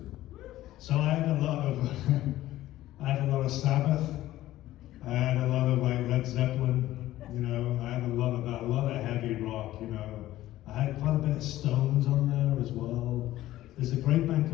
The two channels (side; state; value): right; quieter; 15.0 dB